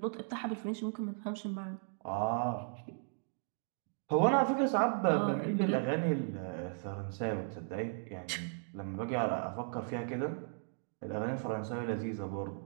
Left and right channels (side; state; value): left; silent; digital silence